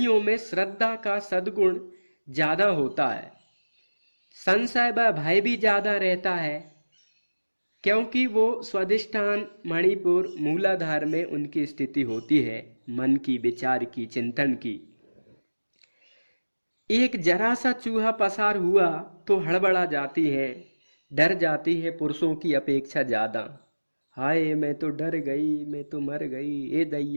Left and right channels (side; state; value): both; inverted; correlation -1.00